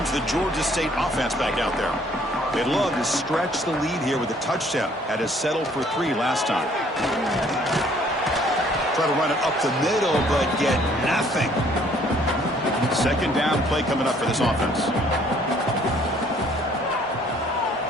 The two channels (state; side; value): normal; both; correlation 0.61